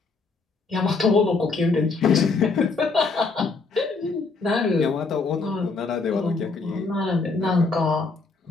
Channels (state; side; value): quieter; right; 4.1 dB